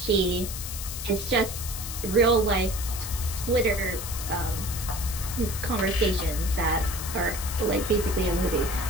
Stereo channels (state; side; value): noise; left; hiss, 7 dB below the sound